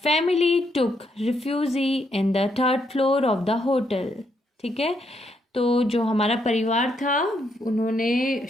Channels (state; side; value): normal; both; correlation 0.76